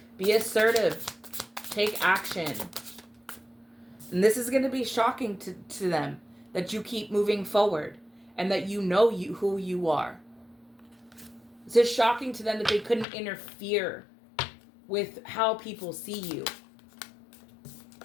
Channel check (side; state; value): right; drops out; at 13.1 s